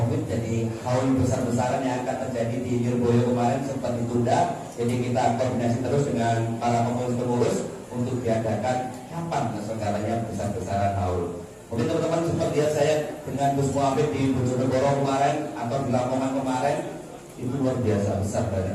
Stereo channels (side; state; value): both; identical; correlation 1.00